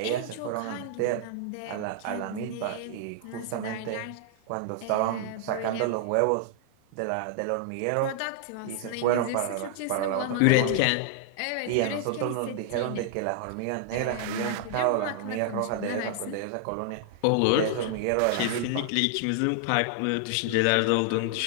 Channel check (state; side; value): different; both; correlation 0.00